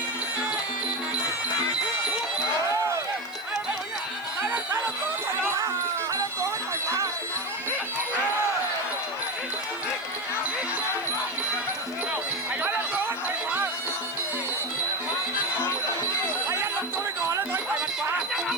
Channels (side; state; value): right; noise; hiss, 26 dB below the sound